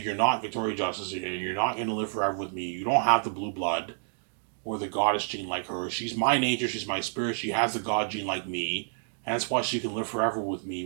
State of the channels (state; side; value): silent; left; digital silence